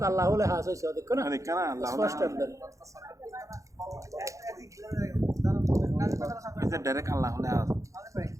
अल्लाह ले हास होइछ देखो ना देखना अल्लाह स्पष्ट अंदर এটা ডাইরেক্ট আল্লাহ হলে হাস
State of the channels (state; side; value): late; left; 0.15 ms